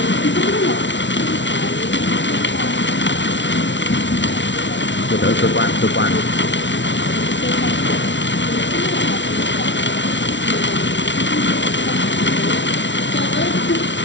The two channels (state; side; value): late; right; 0.53 ms